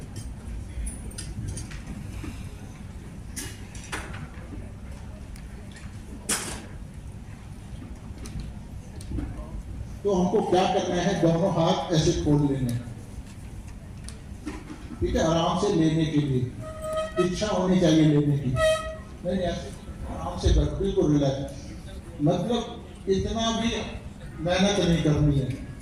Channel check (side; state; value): both; identical; correlation 1.00